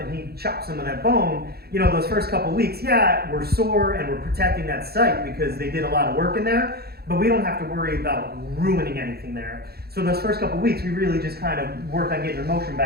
he chops some of that bone, you know, those first couple weeks, yeah, we're sore and we're protecting that site because they did a lot of work in there, but we don't have to worry about ruining anything there. So those first couple weeks, we really just kind of worked on getting your motion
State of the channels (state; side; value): late; left; 0.46 ms